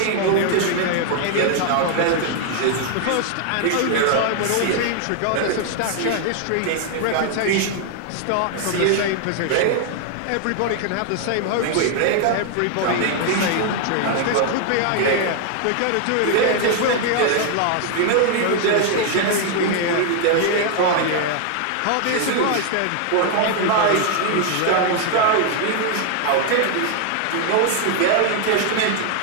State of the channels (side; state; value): both; different; correlation 0.00